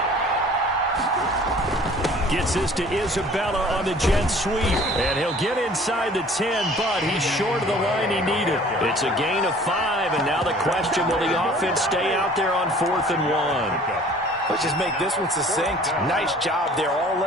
Gets this to Isabella on the jet sweep. And he'll get inside the 10, but he's short of the line he needed. It's a gain of 5, and now the question, will the offense stay out there on 4th and 1? Let's just make this one succinct. Nice job there. All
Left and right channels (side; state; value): both; normal; correlation 0.50